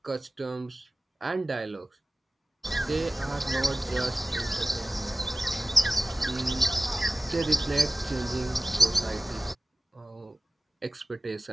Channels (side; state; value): both; normal; correlation 0.97